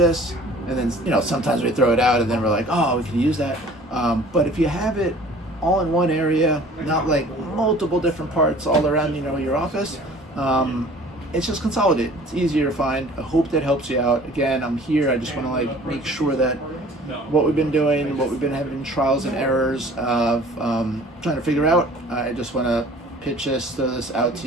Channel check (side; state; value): both; normal; correlation 0.49